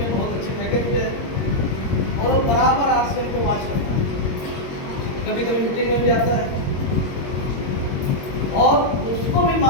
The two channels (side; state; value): right; late; 22 ms